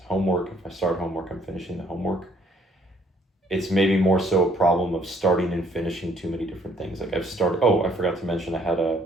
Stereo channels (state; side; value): normal; both; correlation 0.64